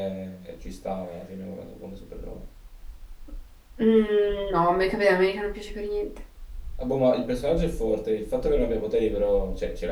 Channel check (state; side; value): identical; both; correlation 1.00